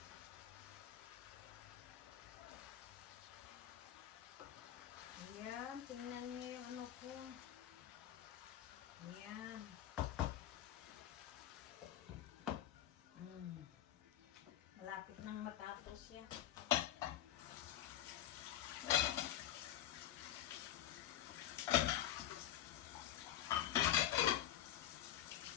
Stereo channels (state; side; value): quieter; right; 12.2 dB